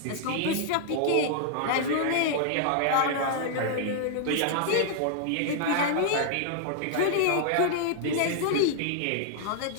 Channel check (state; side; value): different; both; correlation -0.01